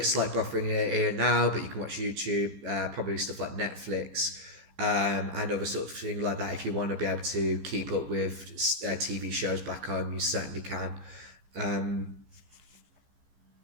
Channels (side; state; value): left; late; 15 ms